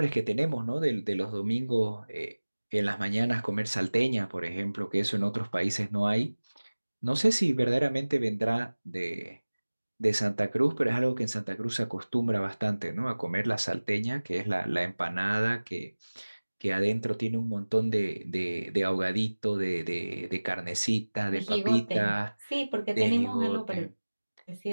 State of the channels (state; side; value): inverted; both; correlation -1.00